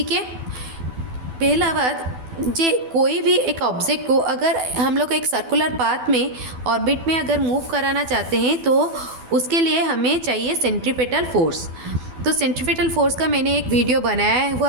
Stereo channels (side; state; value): left; late; 12 ms